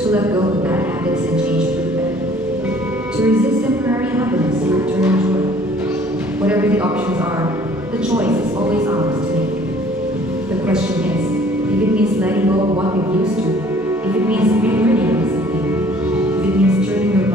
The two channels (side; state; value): both; normal; correlation 0.55